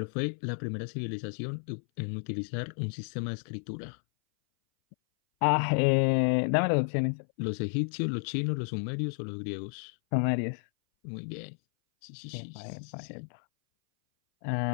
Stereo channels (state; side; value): silent; right; 57 dB below the other